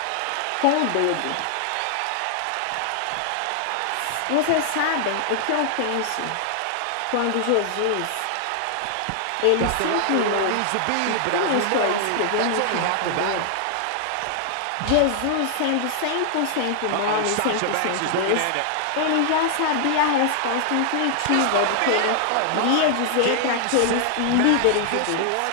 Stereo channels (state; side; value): different; both; correlation 0.00